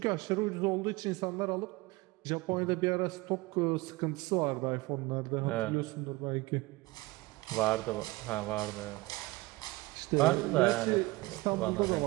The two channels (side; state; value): left; quieter; 21.6 dB